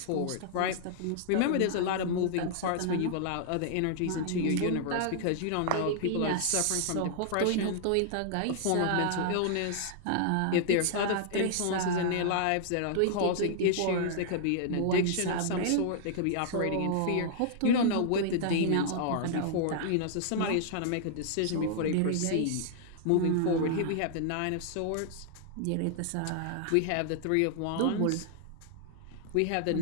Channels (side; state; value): both; different; correlation -0.01